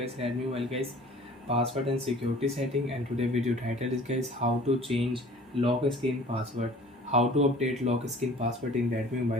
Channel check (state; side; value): normal; both; correlation 0.48